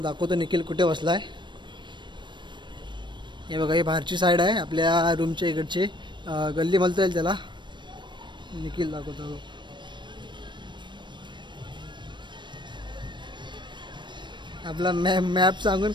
दाखवतो निखिल कुठे बसला आहे. हे बघा, ही बाहेरची साईड आहे आपल्या रूमच्या इकडची. गल्ली म्हणता येईल त्याला. निखिल दाखवतो. आपला मॅप सांगून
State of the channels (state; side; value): late; left; 0.22 ms